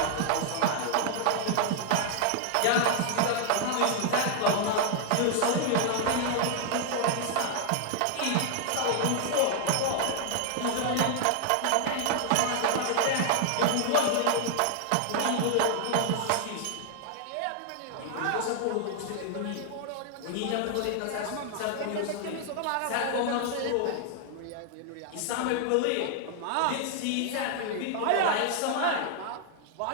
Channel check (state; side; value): different; both; correlation 0.00